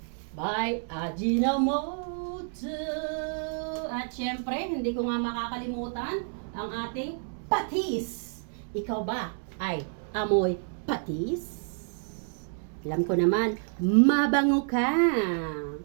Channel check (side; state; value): left; silent; 59 dB below the other